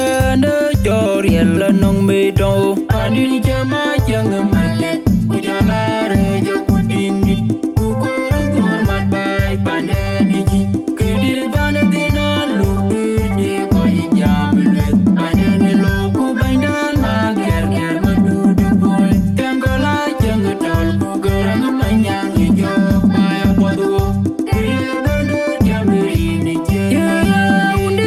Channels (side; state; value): both; identical; correlation 1.00